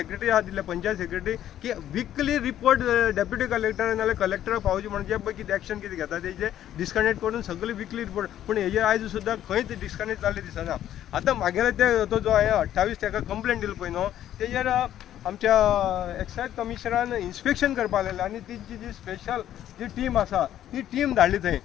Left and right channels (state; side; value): quieter; right; 11.6 dB